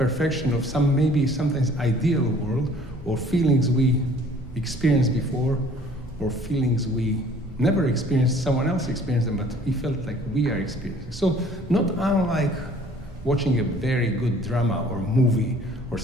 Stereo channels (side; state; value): both; normal; correlation 0.54